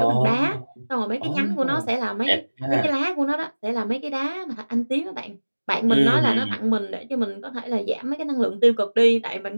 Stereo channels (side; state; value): both; inverted; correlation -1.00